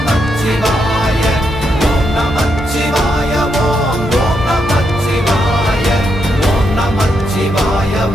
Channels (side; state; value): both; normal; correlation 0.80